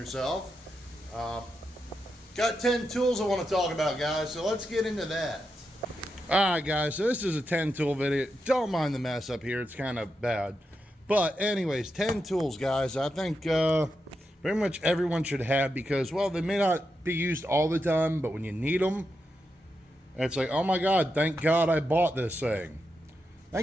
Got 10 tools I want to talk about, guys, so let's get into that. Alright, guys, so this is a 10 tool video. Don't mind the mess up here, it's kind of bad. But anyways, 10 tools, guys, I think pretty much everyone should have, because, well, they may not be used all the time, but when you need them, it's like, oh my god, thank god I bought this thing.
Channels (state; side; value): normal; both; correlation 0.86